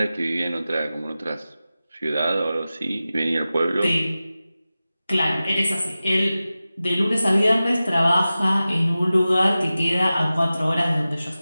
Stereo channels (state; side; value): inverted; both; correlation -0.95